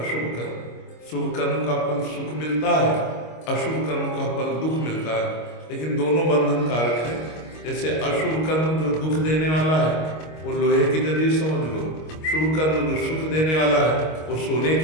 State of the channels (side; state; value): right; late; 25 ms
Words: कर्म। शुभ कर्म का फल सुख मिलता है, अशुभ कर्म का फल दुख मिलता है, लेकिन दोनों बंधन कारक है। जैसे अशुभ कर्म जो दुख देने वाला है वो लोहे की जंजीर समझ लो, शुभ कर्म जो सुख देने वाला है वो सोने